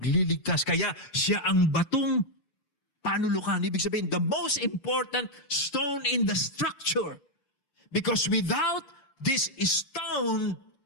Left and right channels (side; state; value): right; late; 6.8 ms